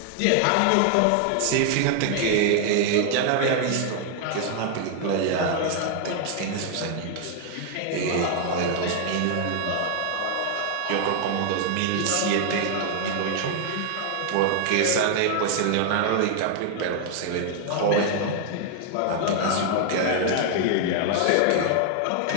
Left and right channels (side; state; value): both; different; correlation 0.00